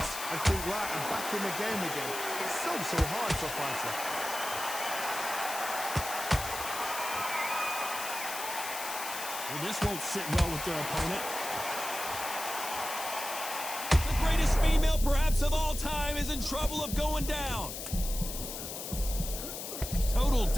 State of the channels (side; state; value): left; noise; hiss, 7 dB below the sound